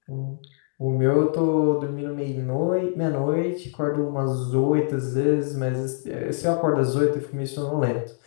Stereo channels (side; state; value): right; silent; 62 dB below the other